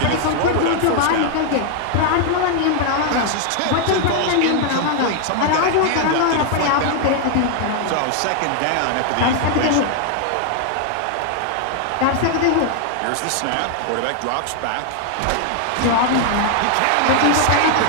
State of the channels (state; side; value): different; both; correlation 0.00